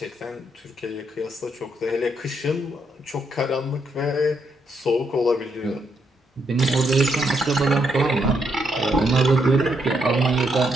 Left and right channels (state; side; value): normal; both; correlation 0.77